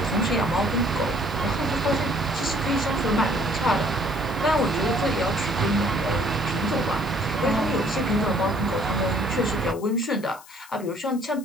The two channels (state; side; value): noise; left; hiss, 21 dB below the sound